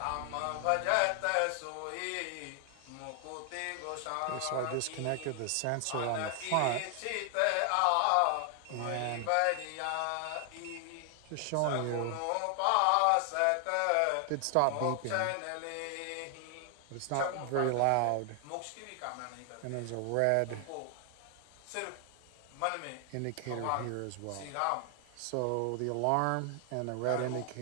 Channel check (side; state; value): both; different; correlation 0.00